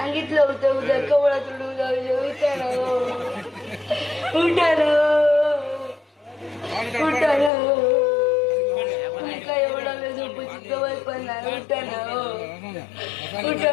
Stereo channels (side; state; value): right; drops out; at 7.5 s